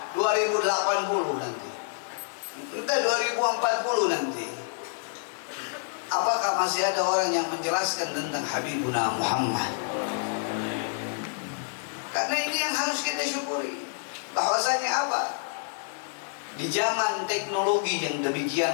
2080 nanti, entah 2040 nanti, apakah masih ada orang yang menjelaskan tentang Habibuna Muhammad? Karena ini yang harus kita syukuri, bahwasanya apa? Di zaman teknologi yang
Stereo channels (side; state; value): right; silent; digital silence